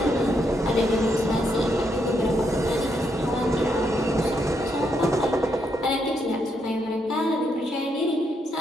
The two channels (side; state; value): both; normal; correlation 0.78